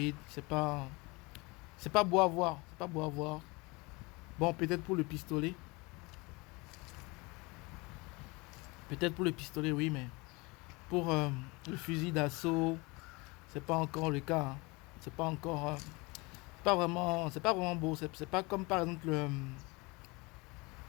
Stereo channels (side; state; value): right; quieter; 25.8 dB